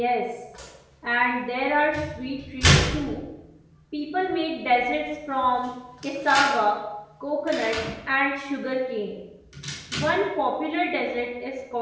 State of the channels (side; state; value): both; identical; correlation 1.00